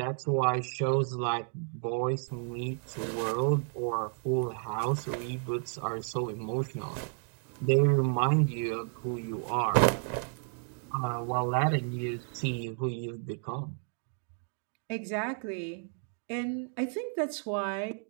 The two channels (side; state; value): left; silent; 56 dB below the other